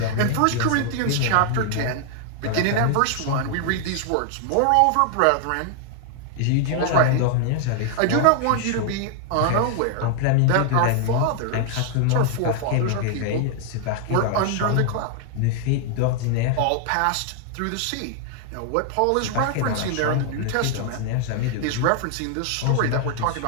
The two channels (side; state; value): both; different; correlation 0.00